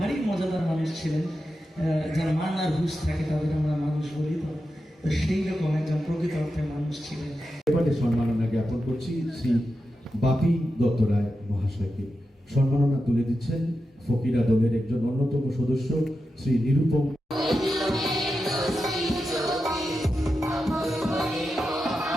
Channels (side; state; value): both; normal; correlation 0.90